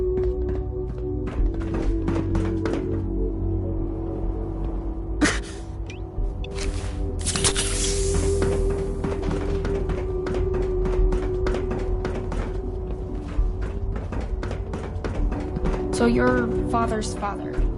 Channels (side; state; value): both; identical; correlation 1.00